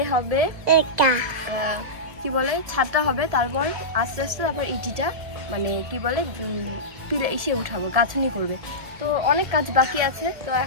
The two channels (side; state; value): left; late; 1.7 ms